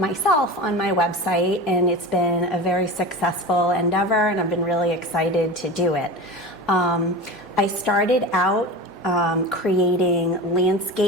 on my website, and it's been a very successful endeavor, and I've been really excited to do it. I started out creating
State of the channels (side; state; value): both; normal; correlation 0.30